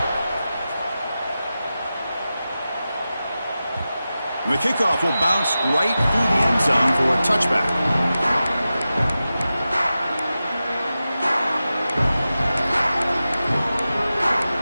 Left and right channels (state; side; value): inverted; both; correlation -0.93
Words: The kickoff will bounce right through the end zone for a touchback.